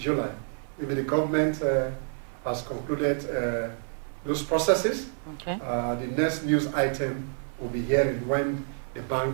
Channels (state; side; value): silent; left; 59 dB below the other